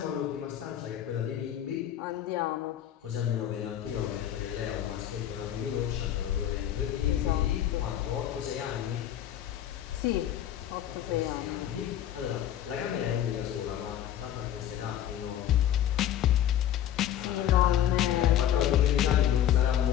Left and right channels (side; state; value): right; quieter; 11.0 dB